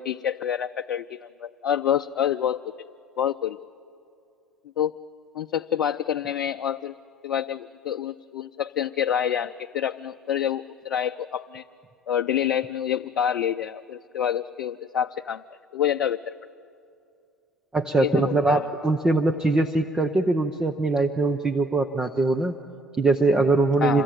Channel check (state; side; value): normal; both; correlation 0.51